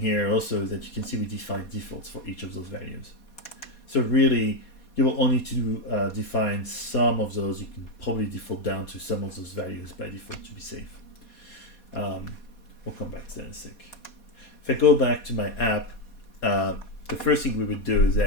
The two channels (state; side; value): late; right; 4.2 ms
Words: also is that you can see we define defaults for each of those values. So really, you will only need to define some of those. You can probably default down to some of those values by default to be safe. We'll come back to that in a sec. If I go back to my app, the first thing we would do is